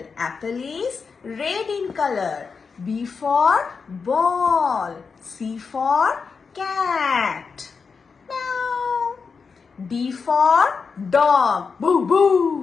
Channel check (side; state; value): right; quieter; 5.3 dB